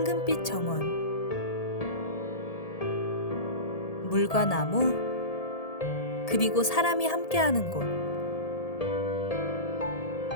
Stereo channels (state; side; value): late; right; 1.7 ms